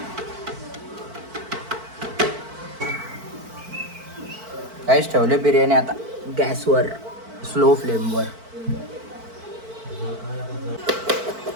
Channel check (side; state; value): left; late; 4.5 ms